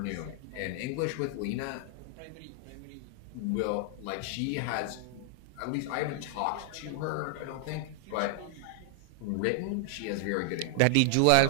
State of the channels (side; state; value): both; different; correlation 0.00